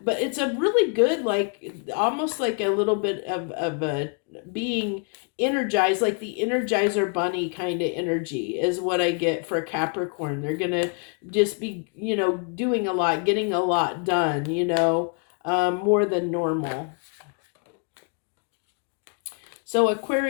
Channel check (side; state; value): right; quieter; 36.9 dB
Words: but it's a really good, like almost like a little bit of a being energized, like the Energizer Bunny kind of energy is what I get for Capricorn. They're going to just be, doing a lot, getting a lot done, more than normal. So